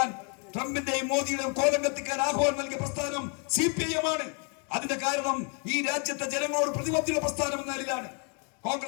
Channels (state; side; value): quieter; right; 37.7 dB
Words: ട്രംപിന്റെയും മോദിയുടെയും കോലം കത്തിക്കാൻ ആഹ്വാനം നൽകിയ പ്രസ്ഥാനം CPIM ആണ്. അതിന്റെ കാരണം ഈ രാജ്യത്തെ ജനങ്ങളോട് പ്രതിബദ്ധത പ്രസ്ഥാനം എന്ന നിലയിലാണ്.